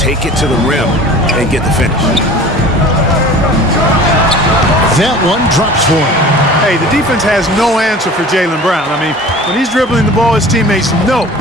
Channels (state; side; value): normal; both; correlation 0.42